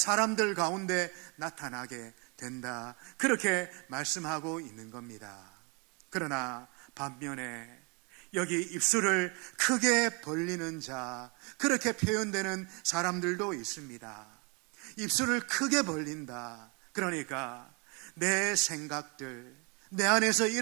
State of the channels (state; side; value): quieter; left; 31.9 dB